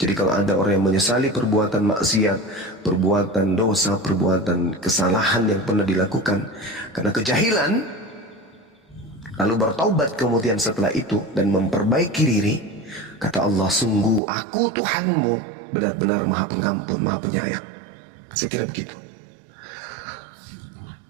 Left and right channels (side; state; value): left; drops out; at 14.2 s